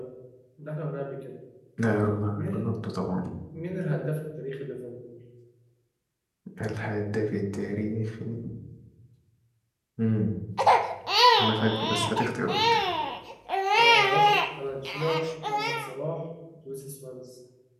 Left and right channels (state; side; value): identical; both; correlation 1.00